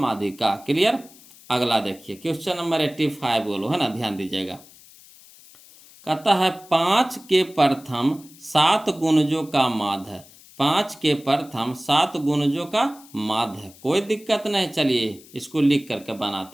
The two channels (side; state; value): left; noise; hiss, 23 dB below the sound